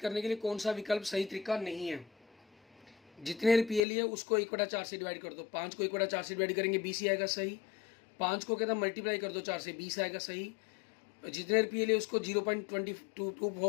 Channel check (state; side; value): drops out; right; at 3.8 s